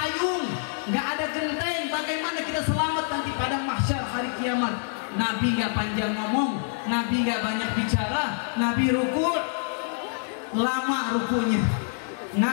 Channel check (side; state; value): right; silent; digital silence